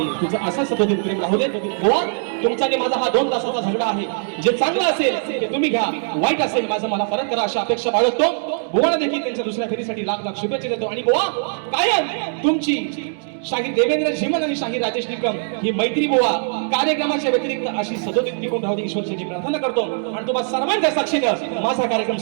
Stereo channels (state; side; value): silent; left; digital silence